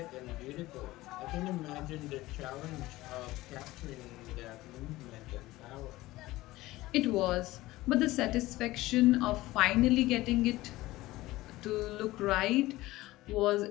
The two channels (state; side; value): quieter; right; 18.1 dB